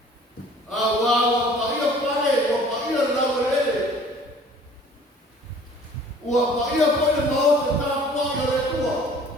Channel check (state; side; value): normal; both; correlation 0.51